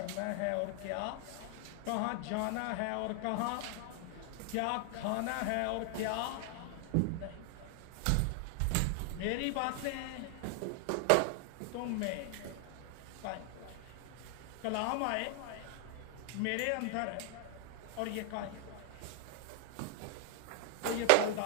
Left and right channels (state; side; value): different; both; correlation 0.00